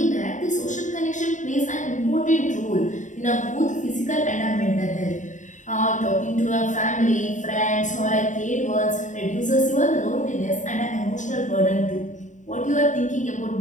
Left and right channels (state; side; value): late; right; 0.36 ms